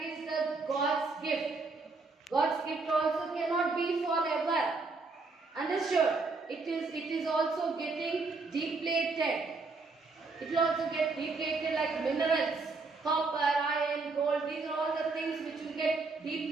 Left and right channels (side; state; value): left; quieter; 3.9 dB